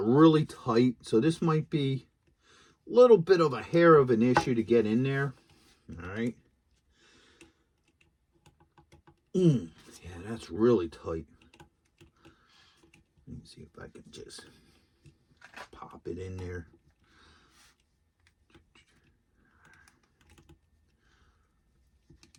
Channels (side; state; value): both; identical; correlation 1.00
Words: really tight, so this might be a little bit of a hair of an issue to get in there. All right. Yeah, that's really tight. Let me see if I can just pop it in there.